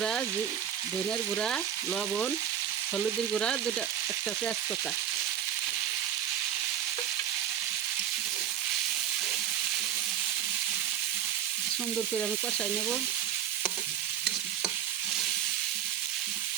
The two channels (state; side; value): quieter; left; 10.1 dB